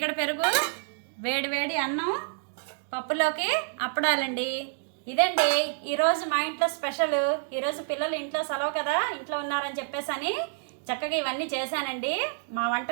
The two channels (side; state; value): left; silent; digital silence